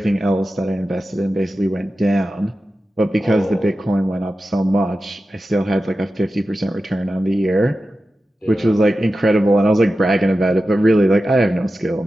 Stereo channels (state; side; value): normal; both; correlation 0.93